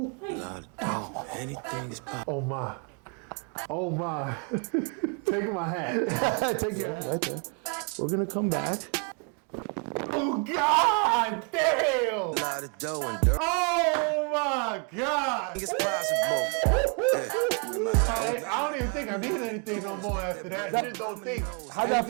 Anything is possible. Oh my. Oh my. Taking my hat. Take your hat right there. We're gonna come back. Oh God damn! A lot of dough and dirt. Oh my God! It's possible. I don't even think I need anything no more after that. I just don't think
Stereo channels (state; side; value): quieter; left; 38.2 dB